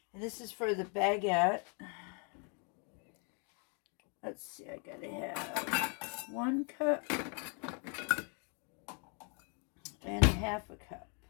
And this is for the baguette. Let's see, I got to have 1 cup and 1/2 cup.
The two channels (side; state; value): right; quieter; 37.8 dB